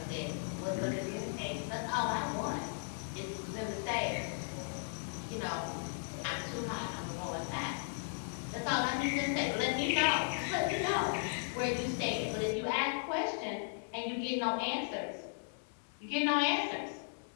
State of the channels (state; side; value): silent; right; 53 dB below the other